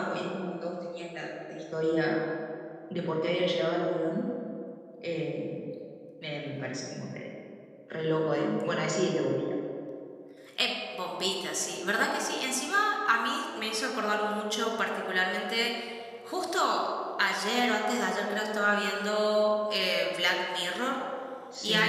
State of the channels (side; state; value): both; identical; correlation 1.00